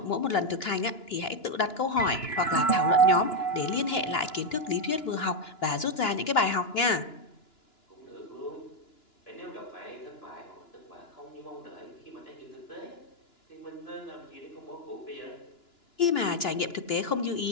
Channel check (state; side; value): late; right; 2.9 ms